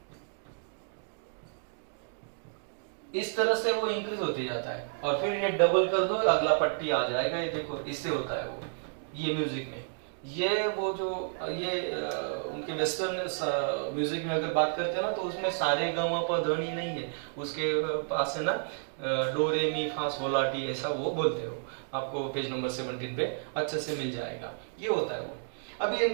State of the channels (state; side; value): silent; left; digital silence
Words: इस तरह से वो इंक्रीज होते जाता है, और फिर ये डबल कर दो, अगला पट्टी आ जाएगा, ये देखो इससे होता है वो, ये म्यूजिक में। ये वो जो ये उनके वेस्टर्न म्यूजिक में अगर बात करते हैं ना, तो उसमें सारे ग म प ध नी नहीं है, उसके पास है ना डो रे मी फा sol ला टी, ऐसा वो बोलते हो, आपको पेज नंबर 17 पे अच्छे से मिल जाएगा, ये होता है वो। अब ये